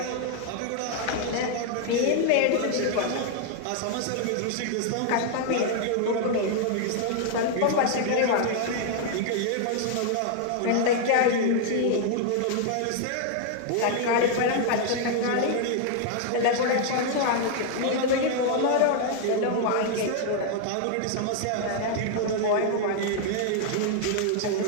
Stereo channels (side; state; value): both; different; correlation 0.00